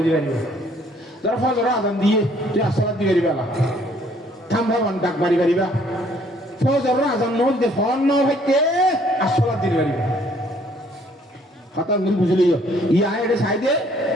dibani dar fajr azan diye tu salat dibe bala thamba wan dak bari bari ba ফজর আজান নল দে von ন হইতে আসলা দিন বাড়ি কথা মিল বুঝলি ইয়া এর সাইডে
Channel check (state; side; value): normal; both; correlation 0.62